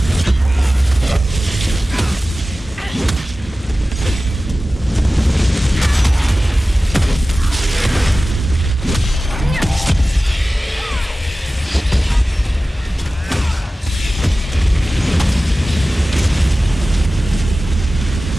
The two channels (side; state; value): both; normal; correlation 0.96